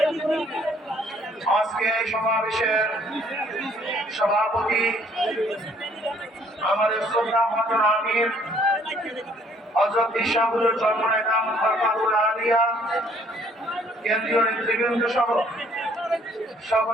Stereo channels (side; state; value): both; normal; correlation 0.61